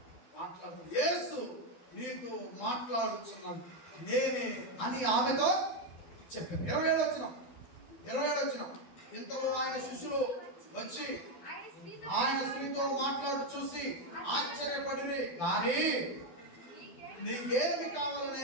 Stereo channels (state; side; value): late; right; 12 ms